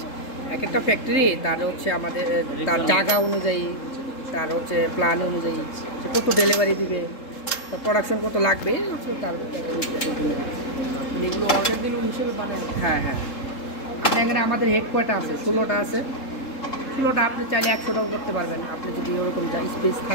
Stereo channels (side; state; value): right; late; 3.7 ms